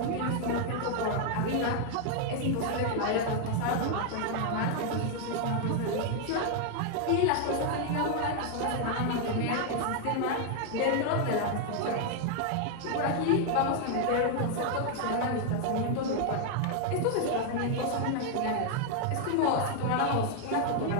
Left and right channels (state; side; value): different; both; correlation 0.00